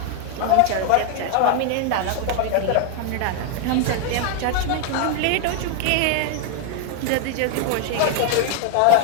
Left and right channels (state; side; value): different; both; correlation 0.00